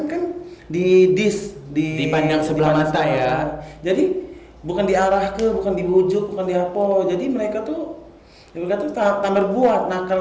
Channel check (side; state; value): both; identical; correlation 1.00